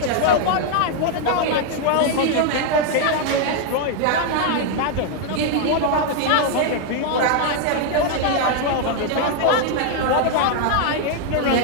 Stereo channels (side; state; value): both; different; correlation 0.00